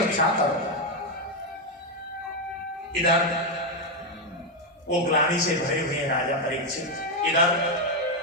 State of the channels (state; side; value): normal; both; correlation 0.04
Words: करो। इधर वो ग्लानि से भरे हुए राजा परीक्षित, इधर